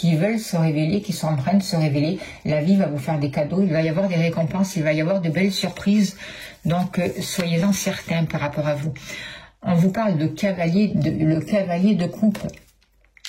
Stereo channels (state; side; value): identical; both; correlation 1.00